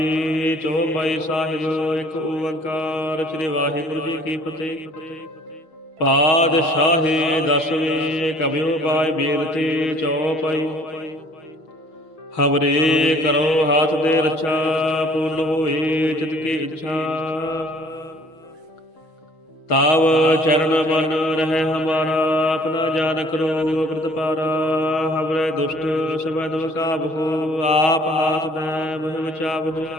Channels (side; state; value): right; late; 6.3 ms